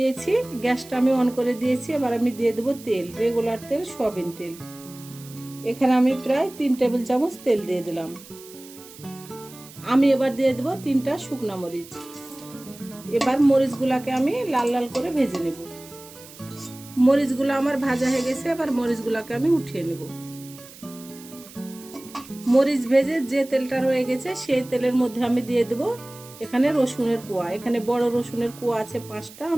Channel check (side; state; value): right; noise; hiss, 19 dB below the sound